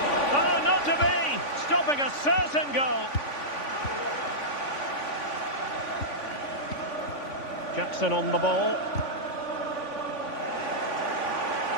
Oh, not to be! Stopping a certain goal. Jackson on the ball.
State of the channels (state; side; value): late; right; 3.5 ms